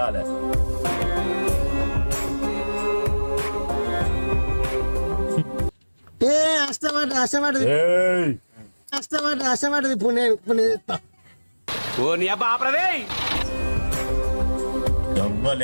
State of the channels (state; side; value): inverted; both; correlation -1.00